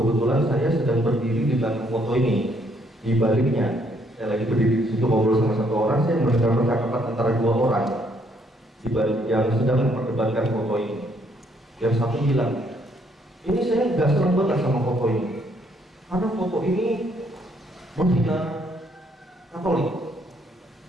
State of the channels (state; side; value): normal; both; correlation 0.69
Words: saya sedang berdiri di belakang foto ini. Di baliknya, saya lagi berdiri di situ ngobrol sama satu orang, saya mendengar percakapan antara 2 orang di balik yang sedang memperdebatkan foto ini. Yang satu bilang, ini saya nggak senang banget sama foto ini, karena foto ini menghina Katolik.